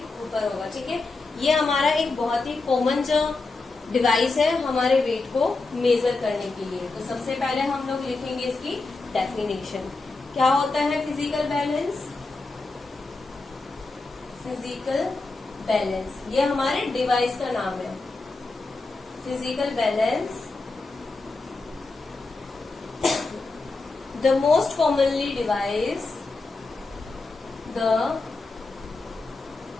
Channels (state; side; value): quieter; right; 3.5 dB